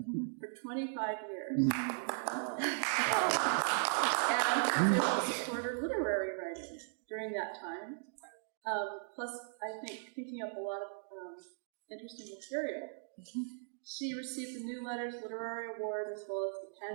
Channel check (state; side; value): silent; left; digital silence